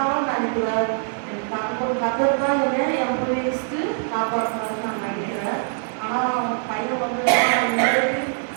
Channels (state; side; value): silent; left; 63 dB below the other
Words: நினைக்கிறேன். கத்தர் தான் என் போய் லிஸ்ட்டு காப்பாற்றினாரு நான் நினைக்கிறேன். ஆனால் பையன் வந்து